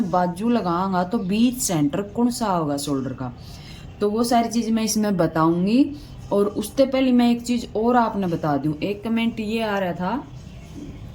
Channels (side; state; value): both; identical; correlation 1.00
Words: बाजू लगाऊंगा तो बीच सेंटर कौन सा होगा शोल्डर का, तो वो सारी चीज़ मैं इसमें बताऊंगी। और उससे पहले मैं एक चीज़ और आपने बता दूं, एक कमेंट ये आ रहा था,